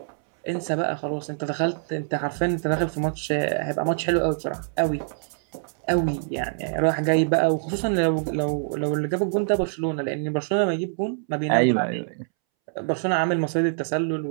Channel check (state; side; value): silent; left; 62 dB below the other